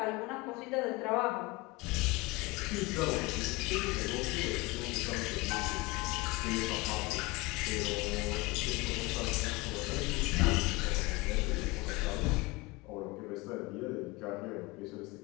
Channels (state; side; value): quieter; right; 23.4 dB